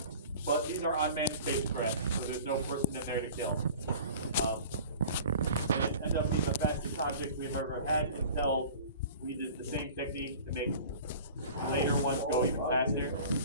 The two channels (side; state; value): both; inverted; correlation -0.42